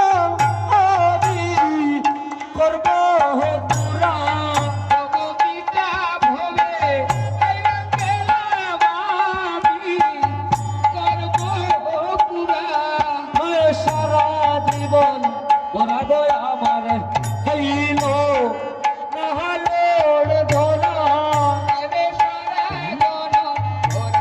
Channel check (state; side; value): identical; both; correlation 1.00